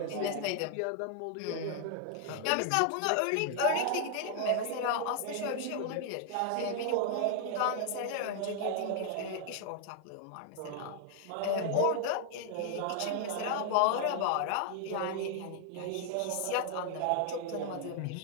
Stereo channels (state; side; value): different; both; correlation 0.00